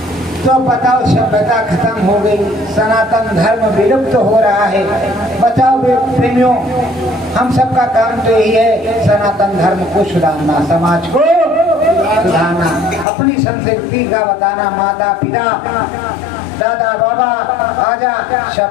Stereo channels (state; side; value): drops out; right; at 13.1 s